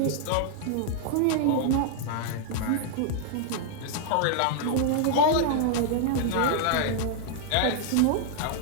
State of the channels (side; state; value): both; different; correlation 0.00